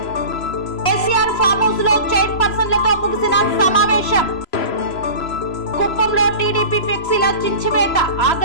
కేసీఆర్ ఫామ్ హౌస్ లో చైర్పర్సన్లతో ముగిసిన సమావేశం. కుప్పంలో టీడీపీ ఫ్లెక్సీల చించివేత,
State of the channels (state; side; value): late; right; 3.0 ms